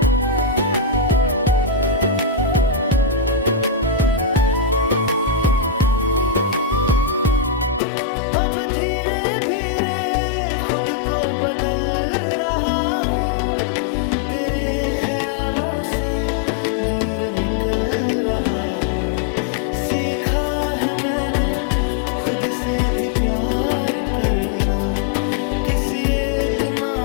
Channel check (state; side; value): drops out; right; at 7.8 s